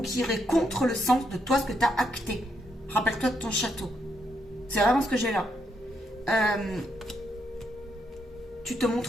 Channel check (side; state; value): both; normal; correlation 0.77